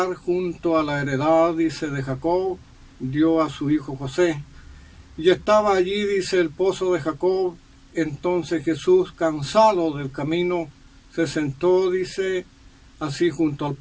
junto a la heredad, dice, de Jacob, dio a su hijo José. Y estaba allí, dice, el pozo de Jacob. Entonces Jesús, cansado del camino, se sentó, dice, así junto al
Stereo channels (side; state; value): both; identical; correlation 1.00